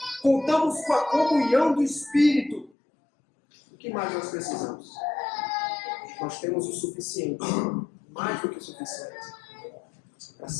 Contamos com a comunhão do Espírito. O que mais nós precisamos? Nós temos o suficiente, mais do que o suficiente, para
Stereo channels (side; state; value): right; drops out; at 2.7 s